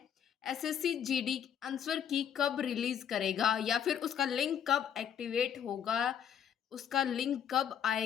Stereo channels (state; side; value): quieter; right; 8.7 dB